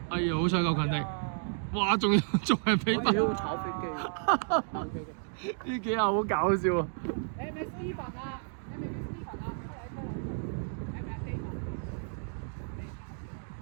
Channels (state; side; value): silent; left; digital silence